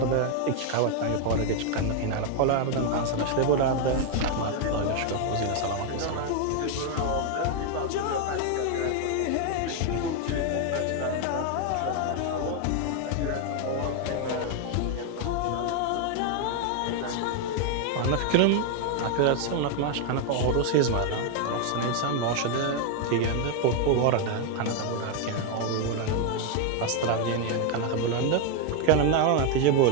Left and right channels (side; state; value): both; different; correlation 0.01